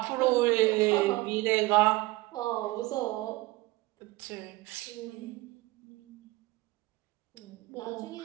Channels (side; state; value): left; quieter; 20.3 dB